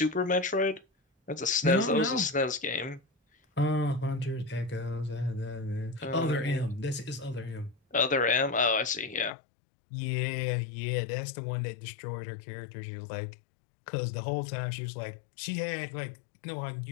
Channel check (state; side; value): drops out; right; at 9.3 s